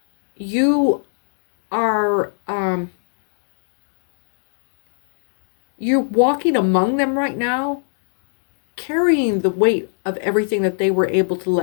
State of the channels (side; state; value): right; silent; digital silence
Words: You are, you're walking among them right now, carrying the weight of everything that they were able to